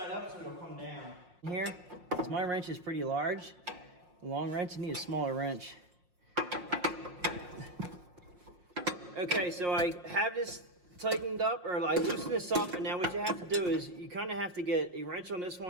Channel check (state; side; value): late; left; 5.6 ms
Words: up so it'll come down. Here, because my wrench is pretty large. A long wrench, you need a smaller wrench. Okay, so I have this tightened up, or I loosen this up, and now what you have to do is you kind of have to get a wrench on this